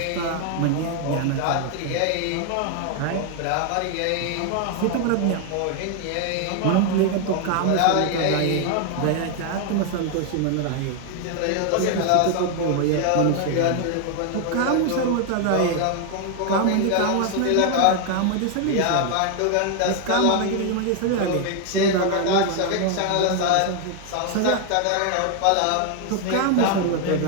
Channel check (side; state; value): both; different; correlation 0.00